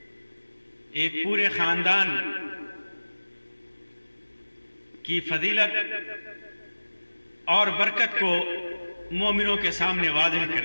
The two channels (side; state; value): both; inverted; correlation -1.00